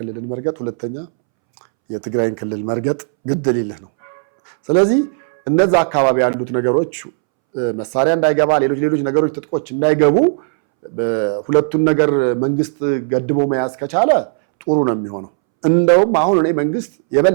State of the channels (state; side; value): silent; left; 67 dB below the other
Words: መርገጥ፣ ሁለተኛ የትግራይን ክልል መርገጥ ግድ ሊልህ ነው። ስለዚህ እነዛ አካባቢ ያሉት ነገሮች መሳሪያ እንዳይገባ፣ ሌሎች ነገሮች ትጥቆች እንዳይገቡ ሁለቱን ነገር መንግስት ገድቦ መያዝ ከቻለ ጥሩ ነው የሚሆነው። እንደውም አሁን እኔ መንግስት